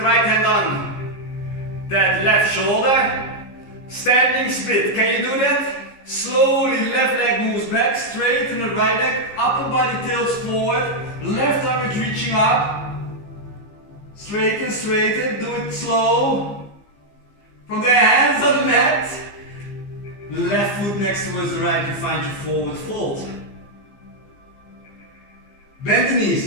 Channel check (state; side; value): late; right; 15 ms